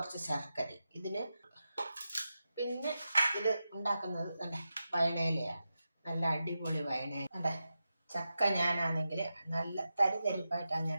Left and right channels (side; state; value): both; inverted; correlation -0.90